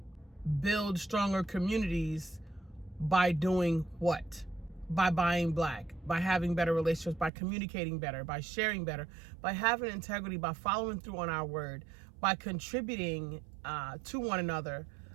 build stronger communities by doing what? By buying Black, by having better relationships, by communicating better, by sharing better, by having integrity, by following through on our word, by contributing to one another.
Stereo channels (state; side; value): drops out; left; at 7.3 s